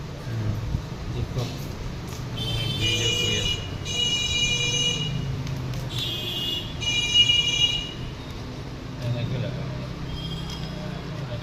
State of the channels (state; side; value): identical; both; correlation 1.00